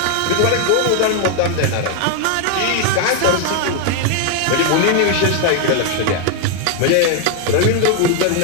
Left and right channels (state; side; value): different; both; correlation 0.00